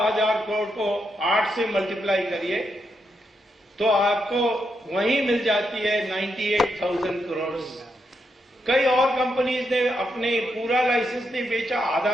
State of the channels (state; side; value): normal; both; correlation 0.82